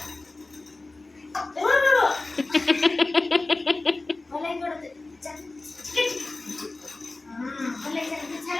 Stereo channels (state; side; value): quieter; right; 3.2 dB